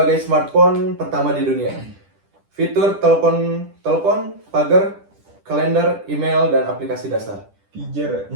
smartphone pertama di dunia. Fitur telepon, pagar, kalender, email, dan aplikasi dasar. Pijar.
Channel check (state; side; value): late; left; 10 ms